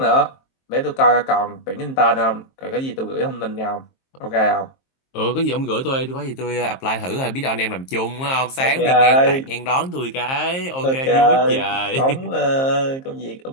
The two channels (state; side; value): late; right; 23 ms